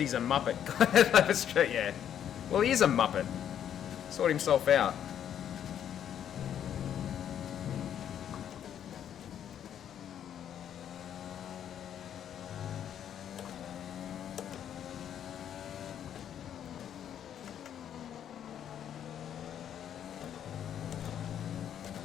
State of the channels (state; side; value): quieter; right; 9.6 dB